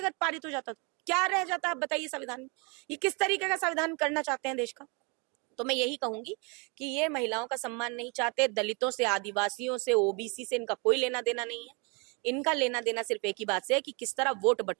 अगर पारित हो जाता तो। क्या रह जाता है, आप बताइए संविधान में? ये किस तरीके का संविधान करना चाहते हैं देश का? तो मैं यही कहूंगी कि ये महिलाओं का सम्मान नहीं चाहते, दलितों से, आदिवासियों से, ओबीसी से इनका कोई लेना देना नहीं है। इनका लेना देना सिर्फ एक ही बात से है कि किस तरह वोट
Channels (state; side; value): quieter; left; 31.9 dB